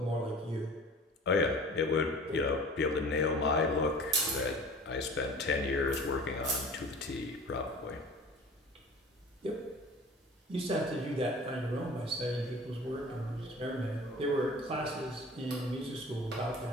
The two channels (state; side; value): normal; both; correlation 0.42